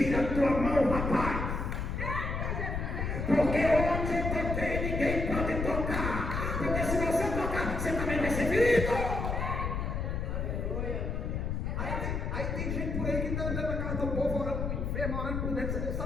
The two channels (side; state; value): left; noise; rumble, 2 dB below the sound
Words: a tua mão, rapaz. Porque onde eu toquei, ninguém pode tocar. Porque se você tocar, você também vai ser ferido. Aí tem gente por aí que está andando na casa do povo, orando para o enfermo, orando por dentro. Você não